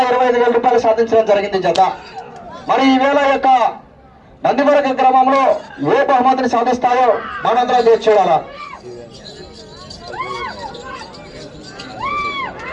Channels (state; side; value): identical; both; correlation 1.00